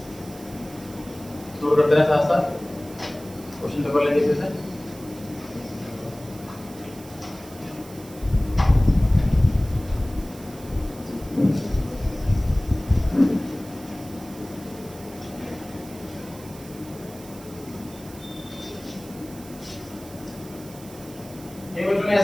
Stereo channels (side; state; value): right; noise; hiss, 19 dB below the sound